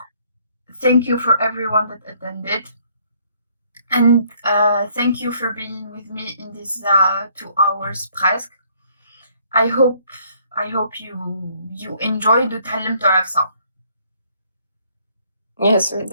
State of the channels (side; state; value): both; inverted; correlation -0.64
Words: thank you for everyone that attended. And thank you for being with me in these 2 hours presque. I hope you enjoyed وتعلمتوا على ça. Yes, we